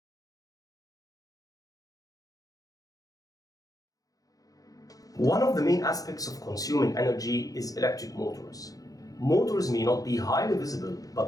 One of the main aspects of consuming energy is electric motors. Motors may not be highly visible,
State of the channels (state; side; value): late; right; 0.17 ms